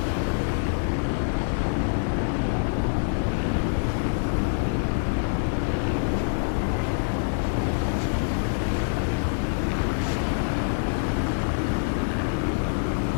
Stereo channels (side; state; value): right; silent; digital silence